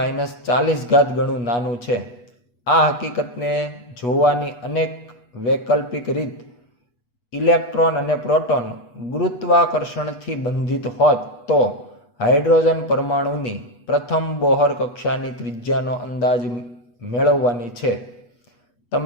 ગણું નાનું છે. આ હકીકતને જોવાની અનેક વૈકલ્પિક રીત ઇલેક્ટ્રોન અને પ્રોટોન ગુરુત્વાકર્ષણથી બંધિત હોત તો હાઇડ્રોજન પરમાણુની પ્રથમ બોહર કક્ષાની ત્રિજ્યાનો અંદાજ મેળવવાની છે.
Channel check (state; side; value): late; right; 8.2 ms